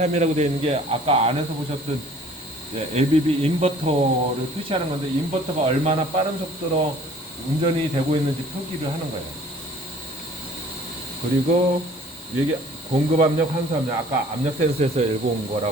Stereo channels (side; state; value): both; normal; correlation 0.52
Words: 되어 있는 게 아까 안에서 보셨던 ABB 인버터를 표시하는 건데, 인버터가 얼마나 빠른 속도로 운전이 되고 있는지 표기를 하는 거예요. 그리고 이게 공급 압력, 환수 압력, 아까 압력 센서에서 읽어온